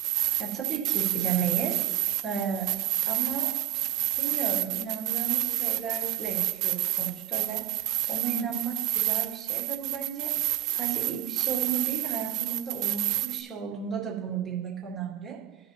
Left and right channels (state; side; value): quieter; left; 11.6 dB